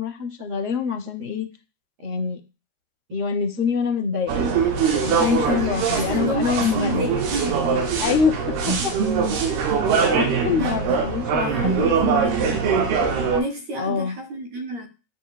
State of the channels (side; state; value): left; late; 13 ms